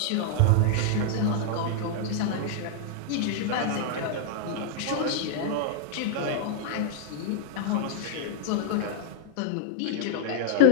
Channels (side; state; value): both; different; correlation -0.01